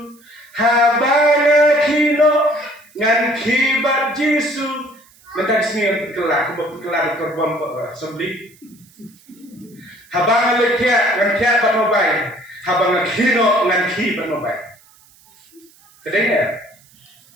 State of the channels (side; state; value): right; noise; hiss, 29 dB below the sound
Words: Habanga kino ngan kibat Jesu. Mentak sini kelak korban sembeli. Habang lekya ngan kya ban mobile, habang kino ngan ki ban mobile. Kedengar?